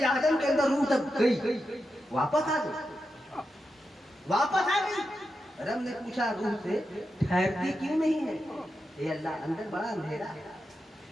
आदम के अंदर रूह तक गई, वापस आ गई, वापस आ गई। रब ने पूछा रूह से, ठहरती क्यों नहीं है? ये अल्लाह, अंदर बड़ा अंधेरा है,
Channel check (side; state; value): both; normal; correlation 0.88